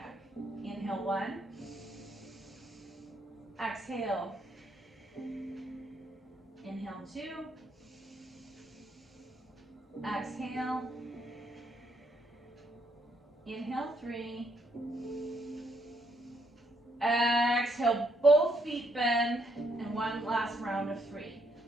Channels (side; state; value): both; normal; correlation 0.73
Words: Inhale 1. Exhale. Inhale 2. Exhale. Inhale 3. Exhale, both feet bend, and one last round of 3.